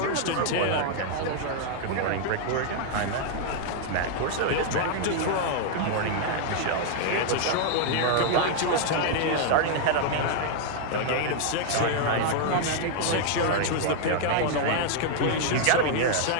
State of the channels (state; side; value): different; both; correlation 0.00